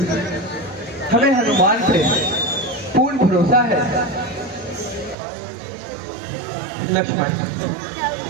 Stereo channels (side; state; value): left; drops out; at 5.2 s